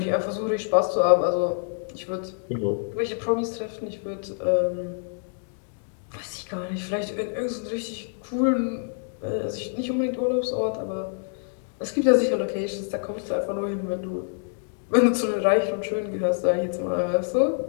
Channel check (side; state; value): right; silent; digital silence